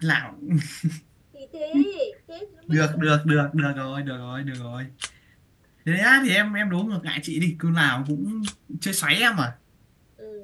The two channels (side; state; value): both; identical; correlation 1.00